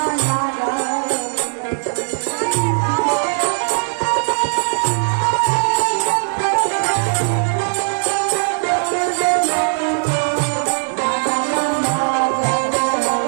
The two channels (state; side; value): silent; left; 62 dB below the other